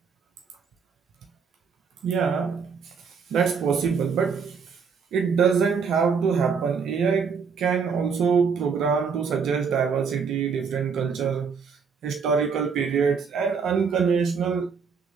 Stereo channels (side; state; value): left; quieter; 5.9 dB